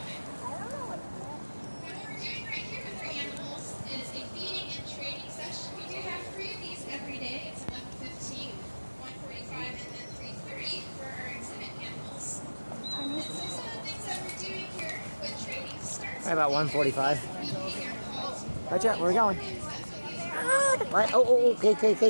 About 1:45. Right, Jet, where are we going? Right. Oh,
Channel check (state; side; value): inverted; both; correlation -1.00